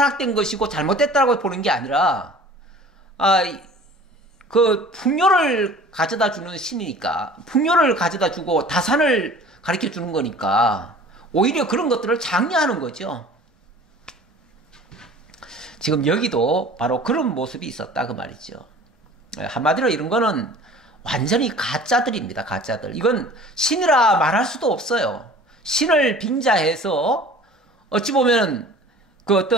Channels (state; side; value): normal; both; correlation 0.45